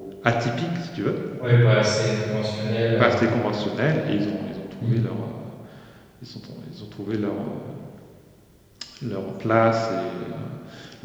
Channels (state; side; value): identical; both; correlation 1.00